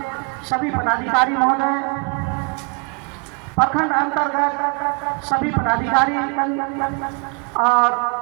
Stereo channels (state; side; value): quieter; left; 33.5 dB